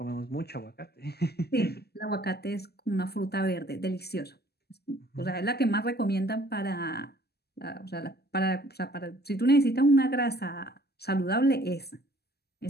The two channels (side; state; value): right; late; 0.46 ms